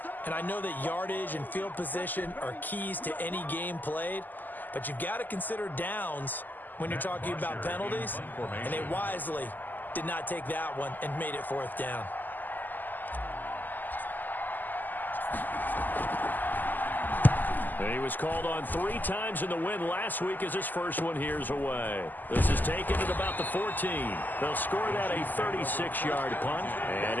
And I know that yardage and field position are keys to any game played, but you've got to consider downs when you're talking about penalties, and they wisely did not take that one and made it 4th down. And he was called on 3 times in the win last week as his first one here's away. This is taken at about the 14. They'll score that a 36-yard punt,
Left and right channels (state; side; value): late; right; 0.086 ms